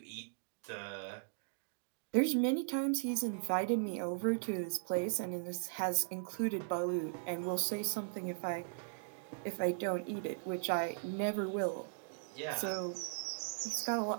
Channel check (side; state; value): left; silent; digital silence